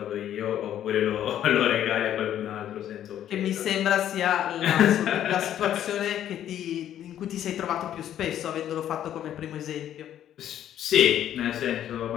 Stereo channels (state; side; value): quieter; right; 11.0 dB